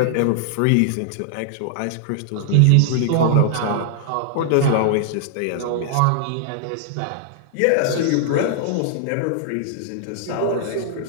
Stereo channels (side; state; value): both; different; correlation -0.01